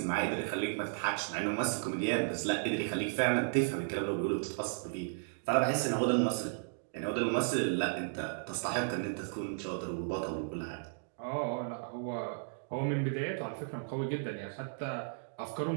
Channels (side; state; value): left; silent; digital silence